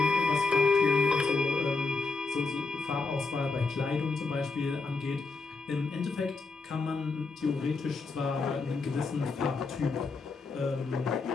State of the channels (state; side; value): quieter; right; 4.1 dB